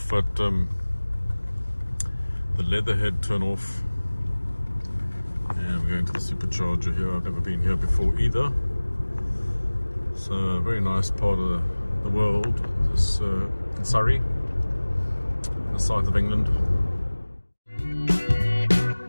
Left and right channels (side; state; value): both; inverted; correlation -1.00